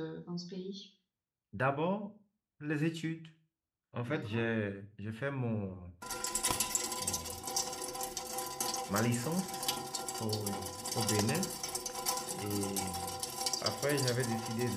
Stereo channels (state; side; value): identical; both; correlation 1.00